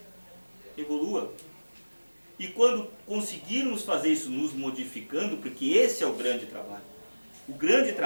evolua. E quando conseguirmos fazer isso nos modificando, porque esse é o grande trabalho. O grande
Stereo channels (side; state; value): both; inverted; correlation -1.00